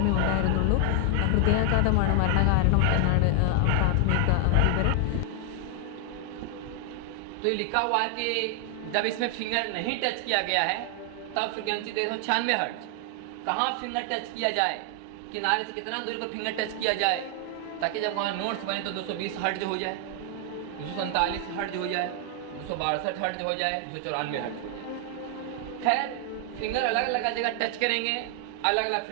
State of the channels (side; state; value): both; different; correlation 0.00